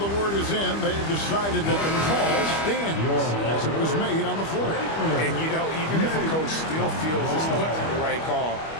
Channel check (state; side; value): late; right; 25 ms